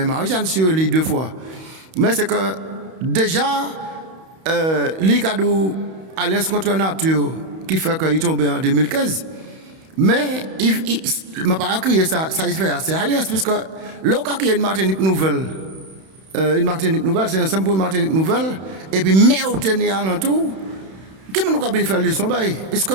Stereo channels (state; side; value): late; left; 31 ms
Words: Marie-Jeanne sur les 2 fois. Mais c'est que déjà, l'Icadou, Alliance contre la nature, qui fait qu'il est tombé en 2015. Mais il m'a pas crié ça il fait c'est Alliance, puisque l'autre qui a une Martinique nouvelle, c'est ensemble pour une Martinique nouvelle, et puis mais au tenir à l'entour, qui nous a bien fait leçon, puisque